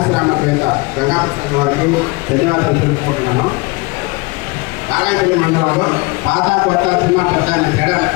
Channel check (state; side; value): quieter; right; 25.5 dB